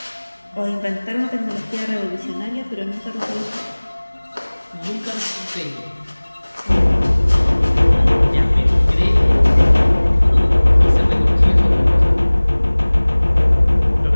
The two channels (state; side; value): inverted; both; correlation -1.00